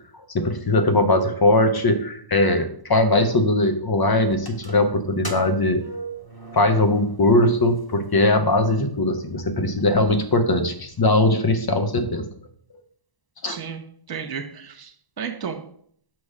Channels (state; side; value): late; right; 1.0 ms